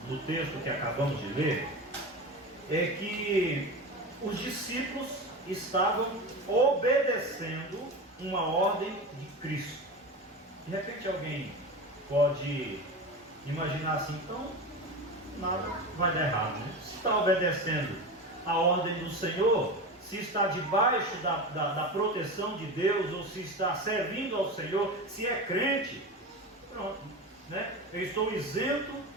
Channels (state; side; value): normal; both; correlation 0.25